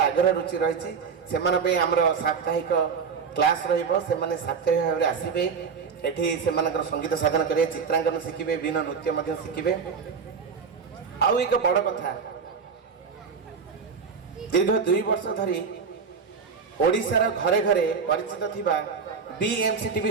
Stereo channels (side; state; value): left; quieter; 5.8 dB